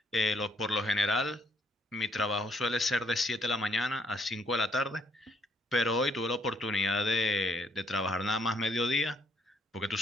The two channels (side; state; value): both; normal; correlation 0.68